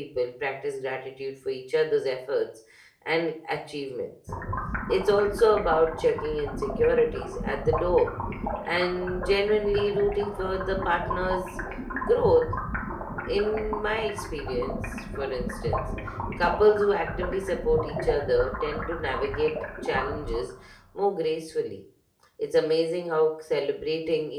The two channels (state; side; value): identical; both; correlation 1.00